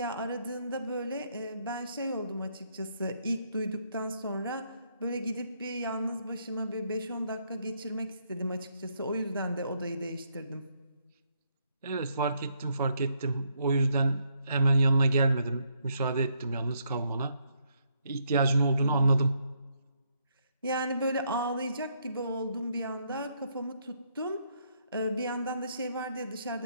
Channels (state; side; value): inverted; both; correlation -0.74